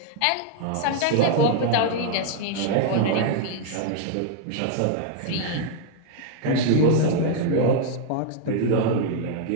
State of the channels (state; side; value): different; both; correlation 0.00